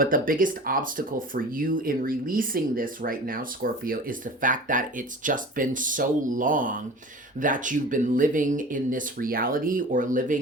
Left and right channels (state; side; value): normal; both; correlation 0.38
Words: the biggest obstacle for you in releasing this right now, Scorpio, is the fact that it's just been so long that you've been living in this reality, or